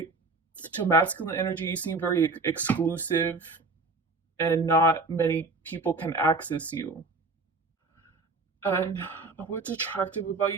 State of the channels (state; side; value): quieter; left; 3.6 dB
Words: to masculine energy. You seem very exclusive, and not many people can access you. And what's attractive